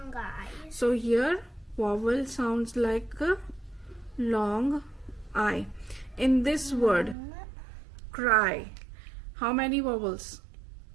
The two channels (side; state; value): left; drops out; at 7.2 s